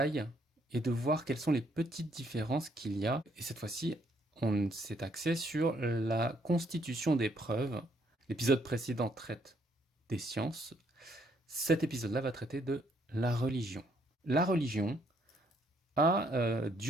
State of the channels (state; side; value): normal; both; correlation 0.69